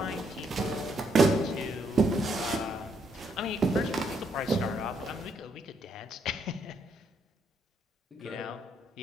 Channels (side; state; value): both; normal; correlation 0.74